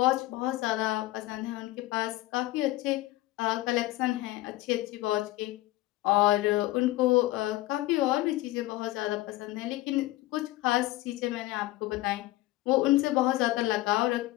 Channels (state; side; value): quieter; right; 17.8 dB